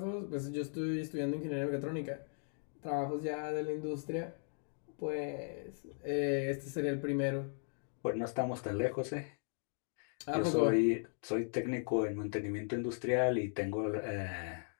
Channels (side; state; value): right; silent; 53 dB below the other